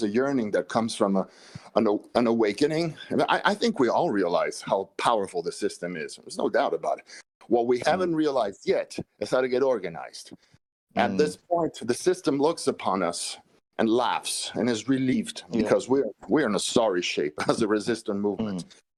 a yearning that comes from an awakening. And I think we all realize how powerful the system is. There's no doubt about it. What we haven't realized yet is how to get organized. At this point, the system looks upon us and laughs and is relieved, because we're in a sorry shape as a resistant movement.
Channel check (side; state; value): both; identical; correlation 1.00